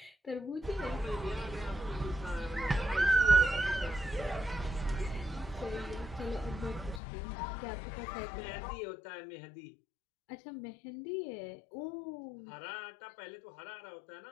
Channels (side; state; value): right; drops out; at 7.0 s